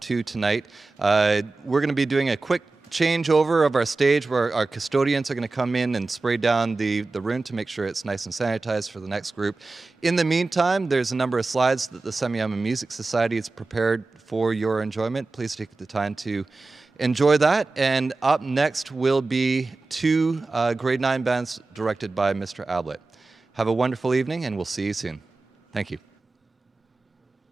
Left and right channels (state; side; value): quieter; left; 3.5 dB